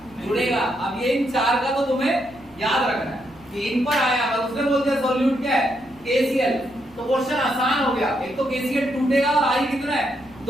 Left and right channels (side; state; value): right; noise; rumble, 26 dB below the sound